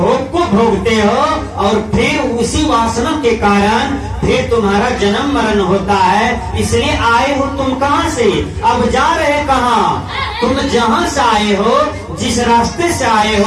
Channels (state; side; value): identical; both; correlation 1.00